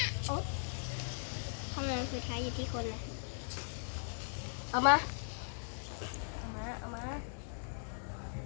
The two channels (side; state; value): right; silent; 52 dB below the other